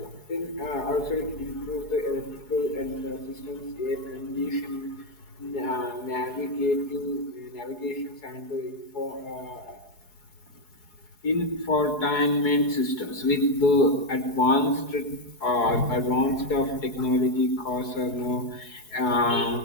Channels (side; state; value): right; late; 4.7 ms